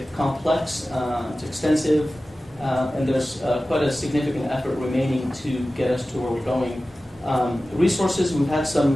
complex, it's extensive, and there's quite a significant effort remaining to get us to where we're going. Resources, we've had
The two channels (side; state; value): both; normal; correlation 0.96